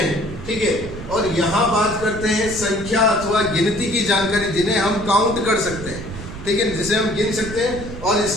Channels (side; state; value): right; noise; rumble, 11 dB below the sound